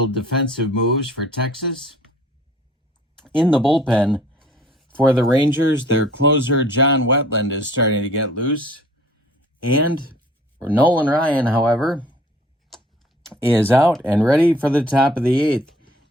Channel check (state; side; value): normal; both; correlation 0.52